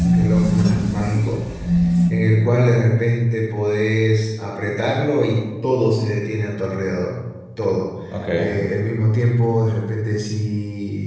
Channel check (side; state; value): both; identical; correlation 1.00